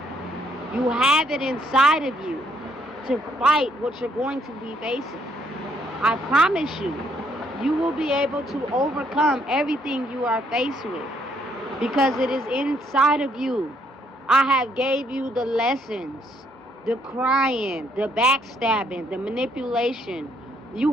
you have it inside of you to fight what you're going to be facing. I promise you, you will be able to overcome everything you are faced with, because it is inside of you. I have gave you the lessons, the crying, the backstabbing, the manipulation. You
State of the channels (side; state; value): both; normal; correlation 0.69